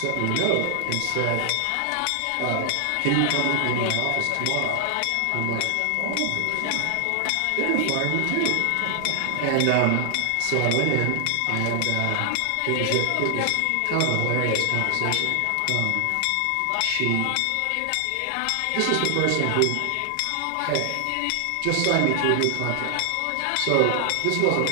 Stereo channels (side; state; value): both; different; correlation 0.00